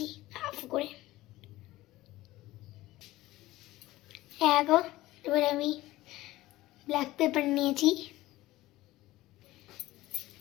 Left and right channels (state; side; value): quieter; right; 17.4 dB